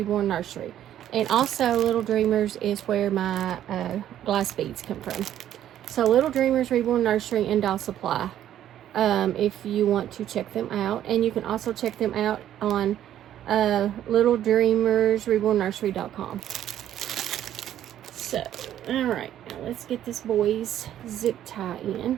Nursery. And also, Little Dreamers is where my glass beads come from. So, Little Dreamers Reborn Nursery and Doll Supply. If you want to check them out. And you can also check them out on littledreamersrebornnursery.com. So, alright, now let's get this boy's zip tie in.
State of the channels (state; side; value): quieter; left; 11.4 dB